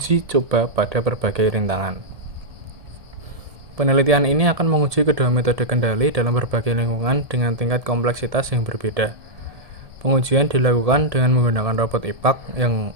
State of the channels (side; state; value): left; late; 1.7 ms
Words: coba pada berbagai rintangan. Penelitian ini akan menguji kedua metode kendali dalam berbagai lingkungan dengan tingkat kompleksitas yang berbeda. Pengujian dilakukan dengan menggunakan robot IPAK yang